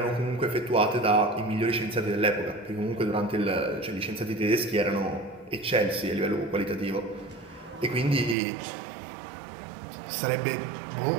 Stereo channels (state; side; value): drops out; left; at 8.3 s